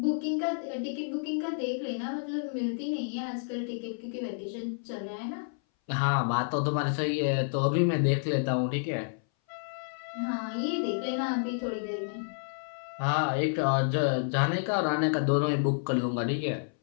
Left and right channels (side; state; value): right; silent; 58 dB below the other